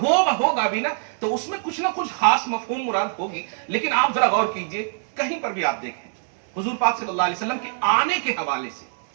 ہوگا بھی نا تو اس میں کچھ نہ کچھ خاص مفہوم مراد ہوگی. لیکن آپ ذرا غور کیجئے, کہیں پر بھی آپ دیکھیں حضور پاک صلی اللہ علیہ وسلم کے آنے کے حوالے سے,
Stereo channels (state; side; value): silent; left; 63 dB below the other